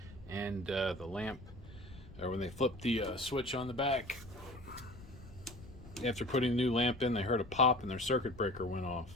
and the lamp, or when they flipped the switch on the back, after putting the new lamp in, they heard a pop and their circuit breaker went off.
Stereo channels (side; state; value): left; noise; rumble, 18 dB below the sound